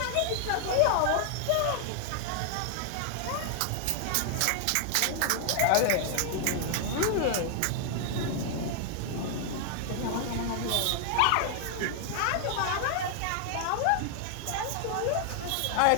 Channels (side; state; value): both; different; correlation 0.00